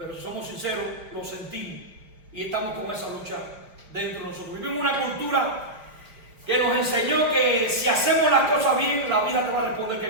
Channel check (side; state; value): left; late; 4.9 ms